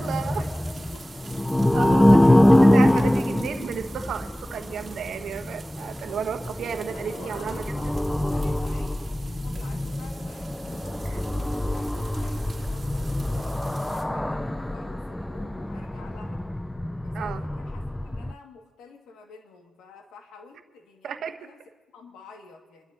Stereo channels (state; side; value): normal; both; correlation 0.97